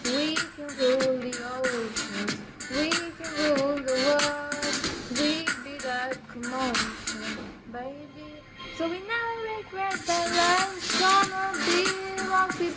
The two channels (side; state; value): both; identical; correlation 1.00